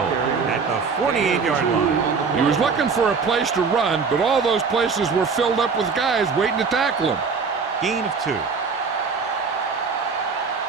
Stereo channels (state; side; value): quieter; left; 5.2 dB